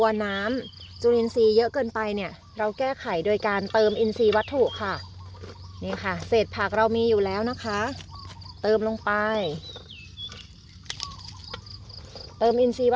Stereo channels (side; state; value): both; identical; correlation 1.00